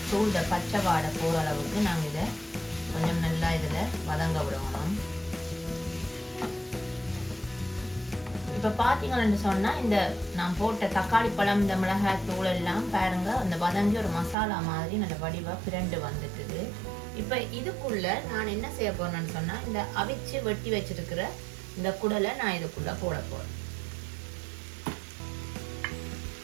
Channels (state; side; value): drops out; left; at 14.4 s